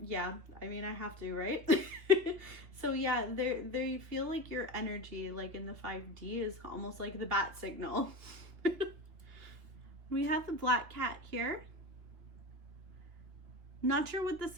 yeah, I mean, I have to, right? So yeah, they feel like your energy, like in the 5D, is almost like the bat signal. We have the black cat here. Not sure what the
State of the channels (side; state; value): left; late; 3.2 ms